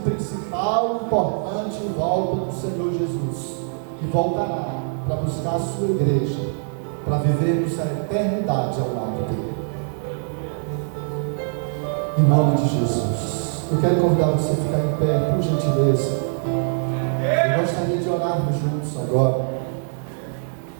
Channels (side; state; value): left; silent; 63 dB below the other